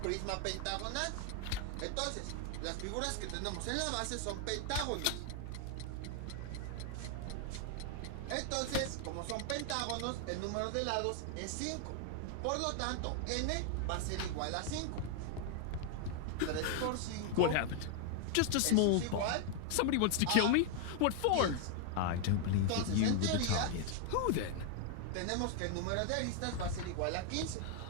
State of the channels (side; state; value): both; different; correlation 0.00